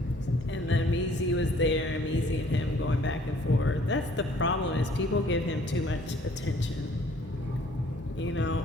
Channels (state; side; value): normal; both; correlation 0.58